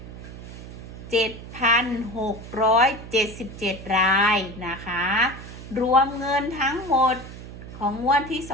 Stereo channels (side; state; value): right; noise; hum, 13 dB below the sound